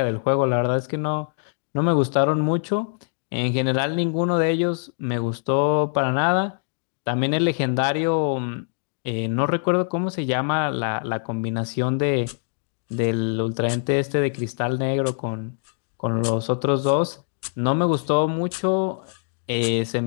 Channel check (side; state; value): right; silent; digital silence